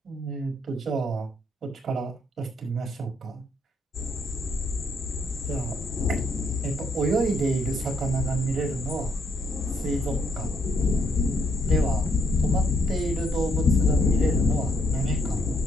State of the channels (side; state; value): both; normal; correlation 0.72